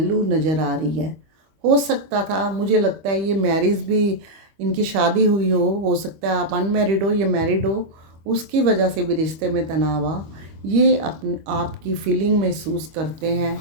नज़र आ रही है। हो सकता था, मुझे लगता है ये मैरिज भी, इनकी शादी हुई हो सकता है आप अनमैरिड हो, ये मैरिड हो, उसकी वजह से भी रिश्ते में तनाव आ। ये अपने आपकी फीलिंग महसूस करते हैं,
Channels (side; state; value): left; late; 25 ms